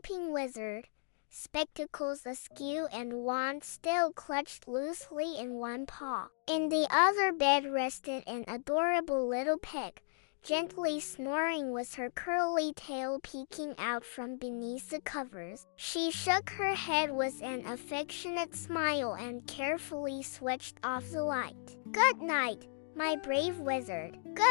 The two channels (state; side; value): silent; right; digital silence